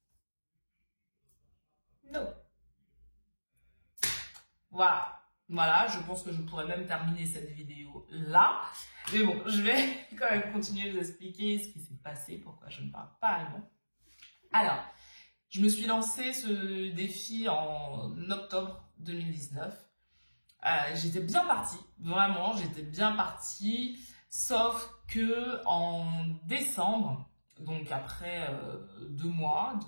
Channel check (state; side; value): inverted; both; correlation -1.00